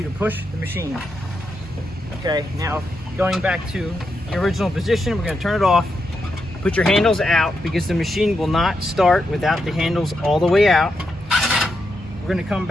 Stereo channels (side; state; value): both; normal; correlation 0.84